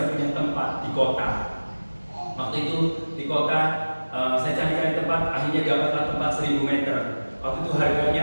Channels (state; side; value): inverted; both; correlation -1.00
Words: punya tempat di kota. Waktu itu di kota saya cari tempat, akhirnya dapatlah tempat 1000 meter. Waktu itu